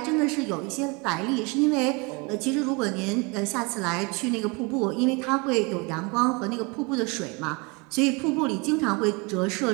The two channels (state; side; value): quieter; left; 29.1 dB